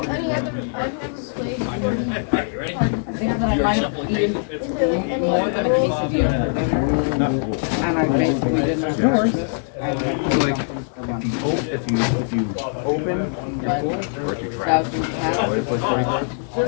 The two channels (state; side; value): silent; right; digital silence